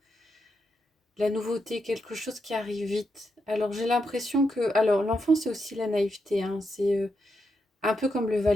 la nouveauté, quelque chose qui arrive vite. Alors, j'ai l'impression que... Alors, l'enfant, c'est aussi la naïveté, hein. C'est... un peu comme le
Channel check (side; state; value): both; normal; correlation 0.83